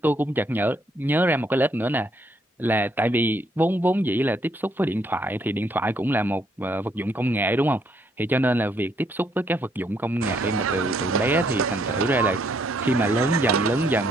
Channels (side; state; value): both; normal; correlation 0.71